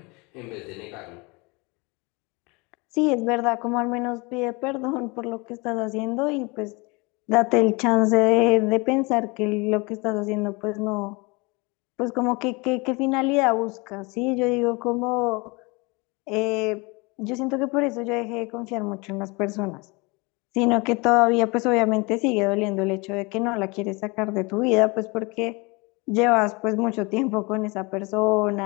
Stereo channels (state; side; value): quieter; right; 27.3 dB